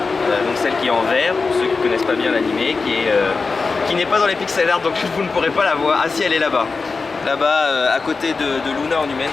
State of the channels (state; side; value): quieter; right; 4.3 dB